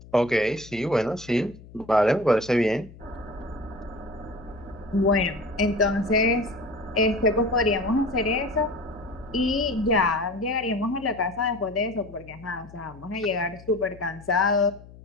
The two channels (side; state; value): left; noise; hum, 20 dB below the sound